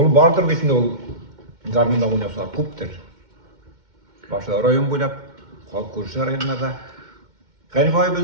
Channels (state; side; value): late; left; 2.1 ms